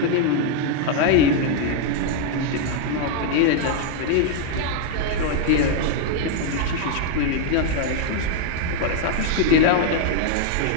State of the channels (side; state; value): both; different; correlation 0.00